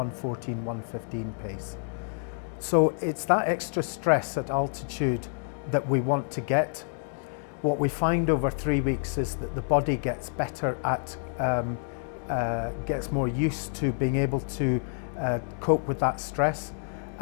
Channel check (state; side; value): silent; right; digital silence